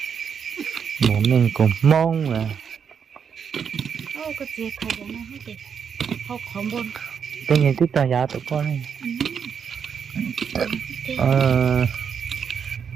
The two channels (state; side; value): quieter; left; 7.1 dB